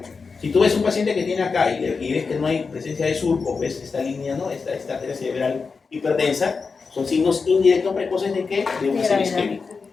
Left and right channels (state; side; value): quieter; right; 4.8 dB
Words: Si tú ves un paciente que tiene acá y ves que no hay presencia de surco, ves esta línea, ¿no? Esta arteria cerebral hiperdensa, son signos indirectos precoces de qué? De un ACV isquémico.